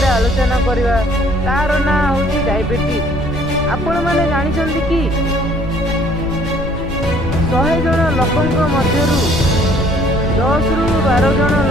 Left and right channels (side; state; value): left; noise; rumble, 8 dB below the sound